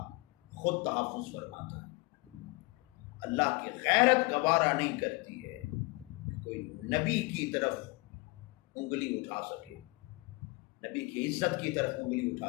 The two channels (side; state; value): right; quieter; 25.2 dB